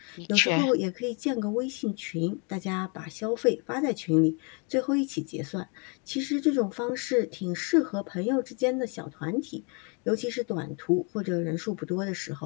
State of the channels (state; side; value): quieter; right; 34.1 dB